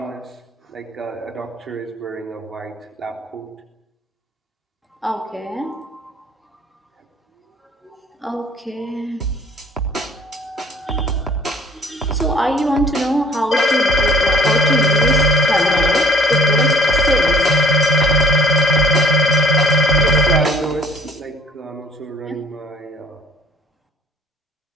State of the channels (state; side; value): normal; both; correlation 0.55